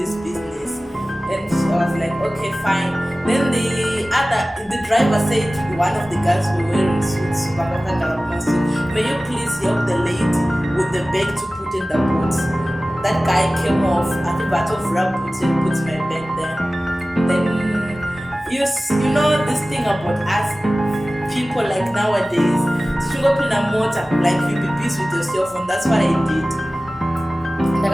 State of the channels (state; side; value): normal; both; correlation 0.97